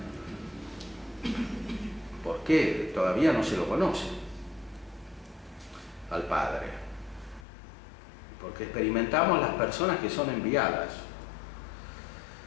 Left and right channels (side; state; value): right; drops out; at 7.5 s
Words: porque todavía no se lo conoce al Padre, porque experimentamos las personas que son enviadas,